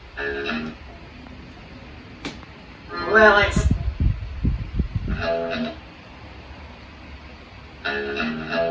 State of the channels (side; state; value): both; identical; correlation 1.00